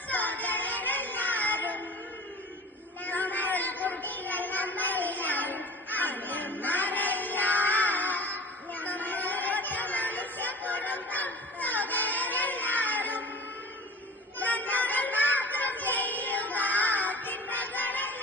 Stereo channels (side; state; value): both; normal; correlation 0.40